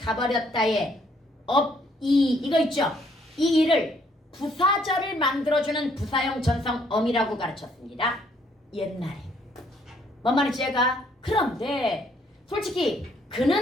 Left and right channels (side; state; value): both; normal; correlation 0.67